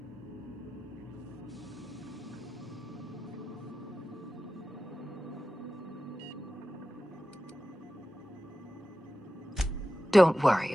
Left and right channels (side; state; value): both; normal; correlation 0.94